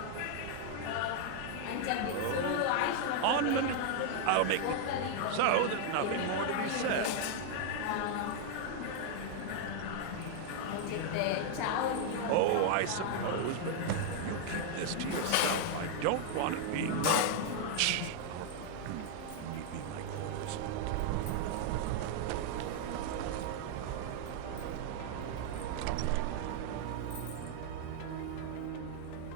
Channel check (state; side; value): different; both; correlation 0.00